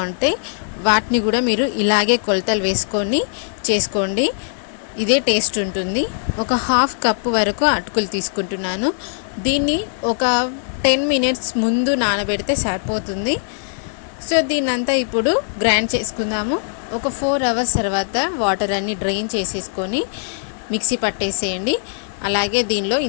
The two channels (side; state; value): right; silent; digital silence